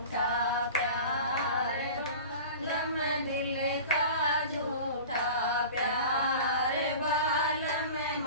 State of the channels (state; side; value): inverted; both; correlation -0.37